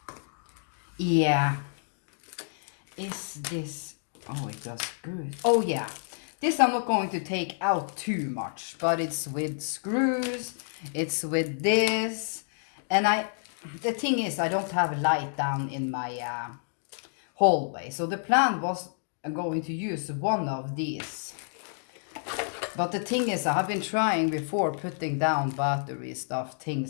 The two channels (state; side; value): silent; right; digital silence